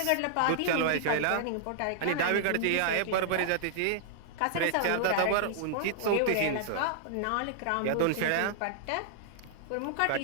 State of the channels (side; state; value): both; different; correlation -0.01